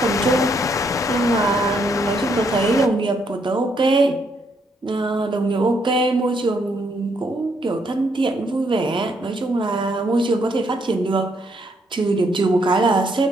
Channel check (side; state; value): both; normal; correlation 0.73